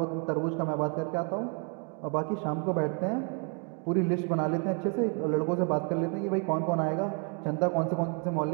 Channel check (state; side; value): quieter; left; 37.9 dB